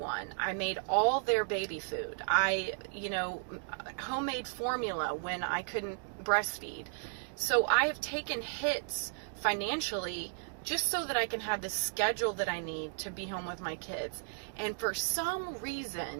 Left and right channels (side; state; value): left; silent; digital silence